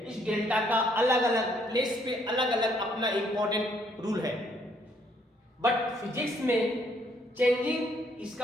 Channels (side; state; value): both; normal; correlation 0.68